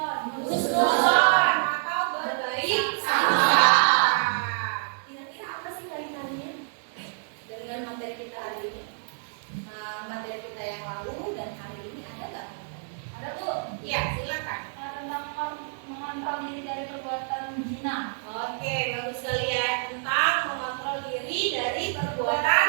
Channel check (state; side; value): silent; left; 60 dB below the other